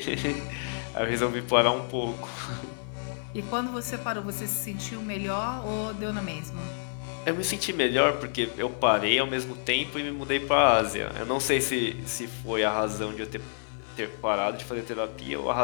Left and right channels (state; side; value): silent; right; digital silence